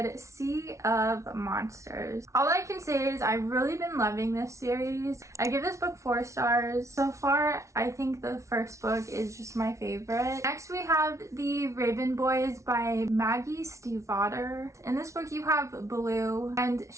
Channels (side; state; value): left; late; 0.14 ms